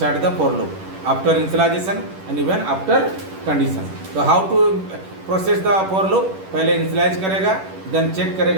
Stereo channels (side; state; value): left; late; 11 ms